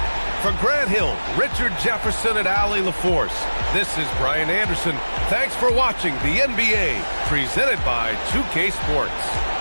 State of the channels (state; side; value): inverted; both; correlation -1.00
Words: For Grant Hill, Richard Jefferson, and Allie LaForce, this is Brian Anderson. Thanks for watching the NBA, presented by 2K Sports.